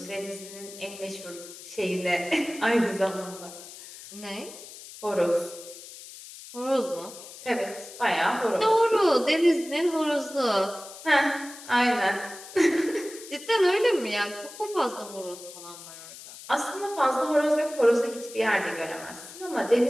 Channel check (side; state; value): left; noise; hiss, 15 dB below the sound